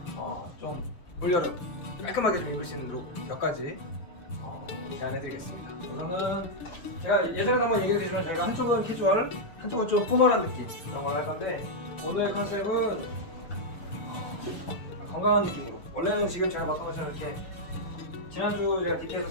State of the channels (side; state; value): right; late; 6.7 ms